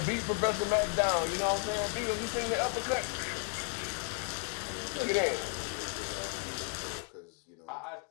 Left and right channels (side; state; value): right; quieter; 39.6 dB